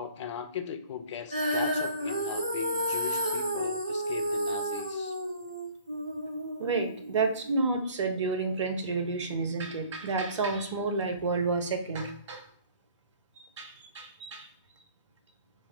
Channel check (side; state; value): both; inverted; correlation -0.52